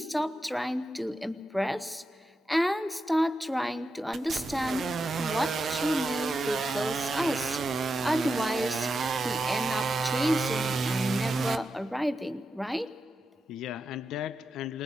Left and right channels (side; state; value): both; normal; correlation 0.88